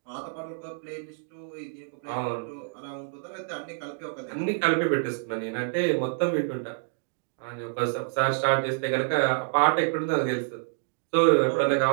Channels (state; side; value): silent; left; digital silence